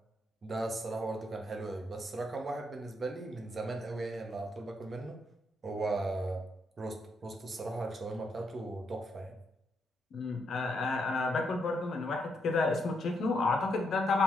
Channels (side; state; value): both; normal; correlation 0.78